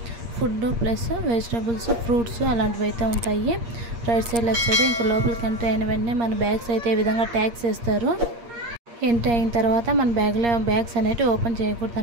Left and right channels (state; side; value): late; left; 8.5 ms